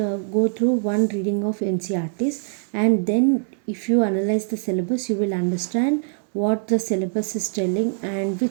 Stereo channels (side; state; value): left; silent; digital silence